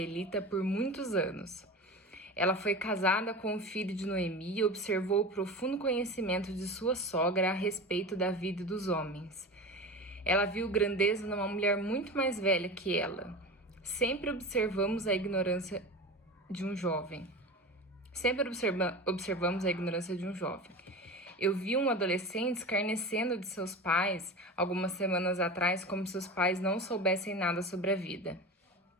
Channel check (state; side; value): normal; both; correlation 0.29